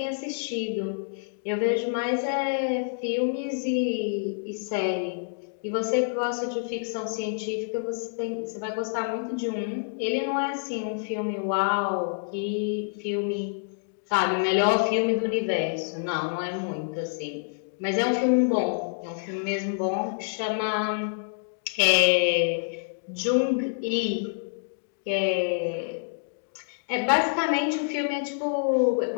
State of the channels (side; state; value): right; silent; digital silence